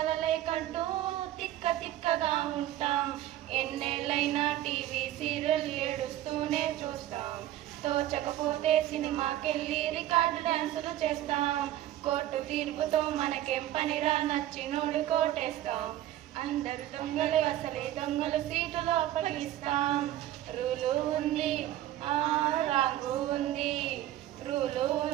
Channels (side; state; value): left; quieter; 13.6 dB